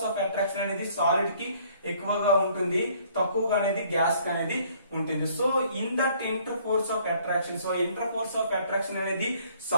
of attraction అనేది సాలిడ్ కి ఎక్కువగా ఉంటుంది, తక్కువగా అనేది గ్యాస్ కి అనేది ఉంటుంది. So in that inter force of attraction, so inter force of attraction అనేది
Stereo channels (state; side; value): inverted; both; correlation -0.60